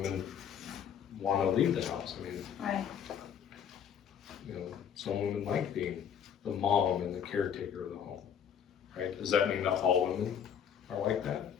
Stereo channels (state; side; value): quieter; right; 8.3 dB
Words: want to leave the house. I mean, Right. you know, some women like being the mom and the caretaker of the home, right? Does that mean that all women are like that?